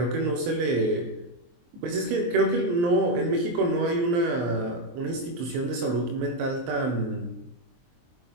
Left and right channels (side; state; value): left; late; 23 ms